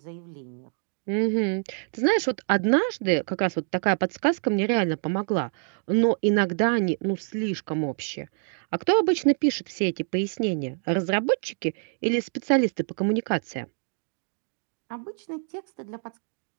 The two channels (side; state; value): left; silent; 57 dB below the other